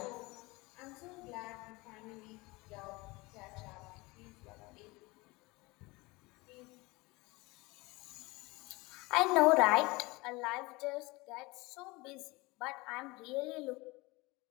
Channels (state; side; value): quieter; right; 23.5 dB